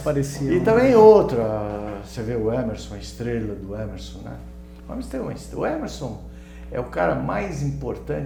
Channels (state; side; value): identical; both; correlation 1.00